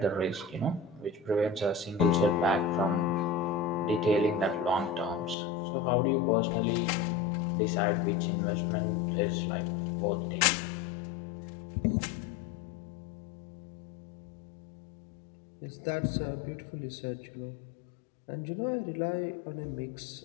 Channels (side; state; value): right; drops out; at 5.4 s